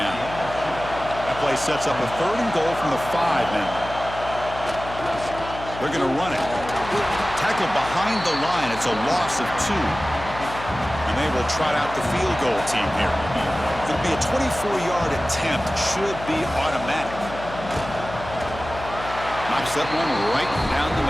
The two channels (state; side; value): noise; left; hum, 11 dB below the sound